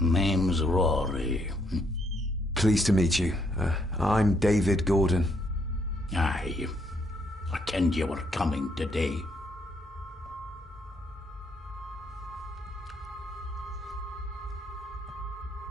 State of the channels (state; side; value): normal; both; correlation 0.71